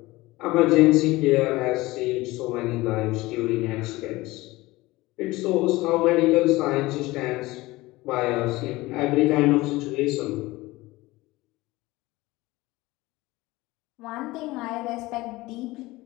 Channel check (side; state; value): right; quieter; 19.9 dB